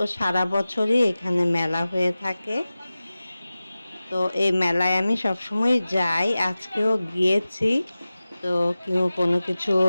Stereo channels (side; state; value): both; inverted; correlation -0.96